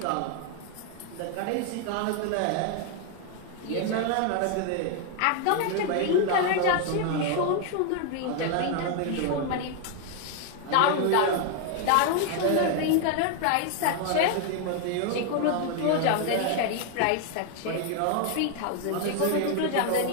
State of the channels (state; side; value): different; both; correlation 0.00